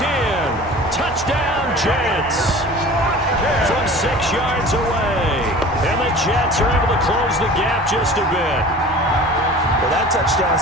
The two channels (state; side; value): normal; both; correlation 0.41